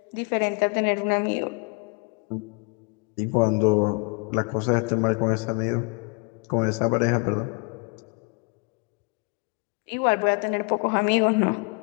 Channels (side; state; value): right; quieter; 31.8 dB